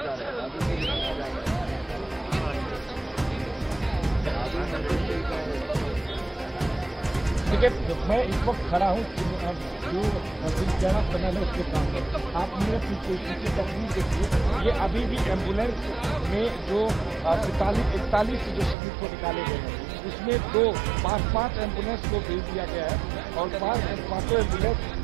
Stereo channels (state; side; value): drops out; left; at 18.8 s